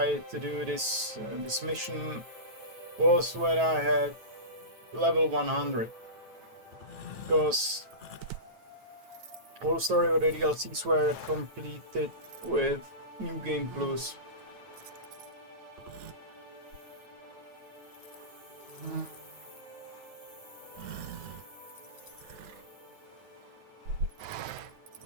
to do this mission was when I had level 100. Because all story of the DLCs were completed with New Game Plus.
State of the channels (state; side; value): late; left; 9.2 ms